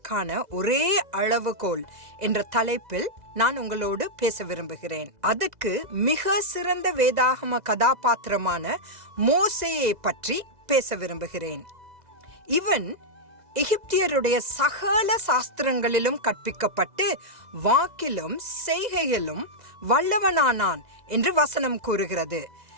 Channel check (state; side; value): late; left; 2.0 ms